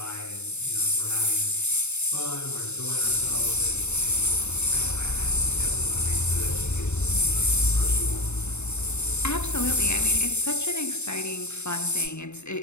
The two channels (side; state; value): right; late; 0.82 ms